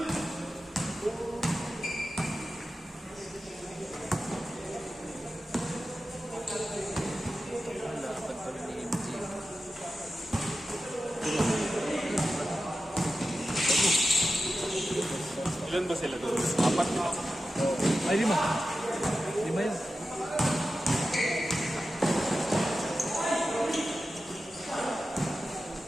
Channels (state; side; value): normal; both; correlation 0.92